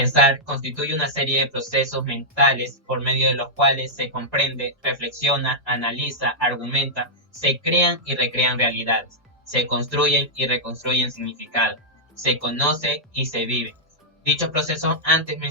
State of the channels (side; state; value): both; normal; correlation -0.08